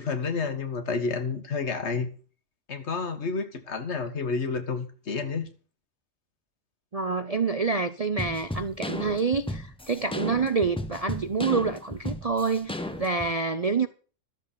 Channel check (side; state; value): both; normal; correlation -0.13